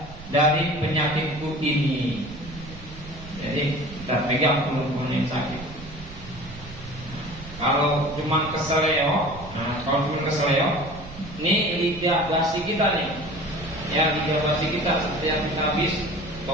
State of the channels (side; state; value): right; noise; rumble, 15 dB below the sound